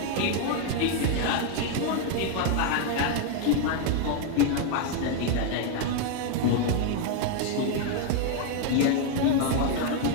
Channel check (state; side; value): different; both; correlation 0.01